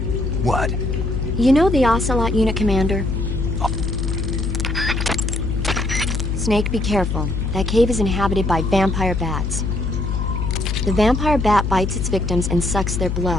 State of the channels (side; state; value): left; noise; hum, 1 dB below the sound